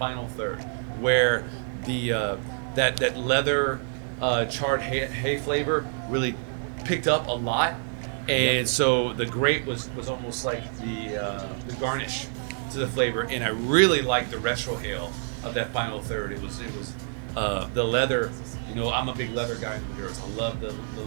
third, where the that leather charred hay flavor really picked up a lot. And so the grape was almost like the garnish to the flavor, and I really liked the retrohale of that final third. It was the leather. You know, I'm a big leather guy in the Maduros. I love the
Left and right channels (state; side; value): silent; left; digital silence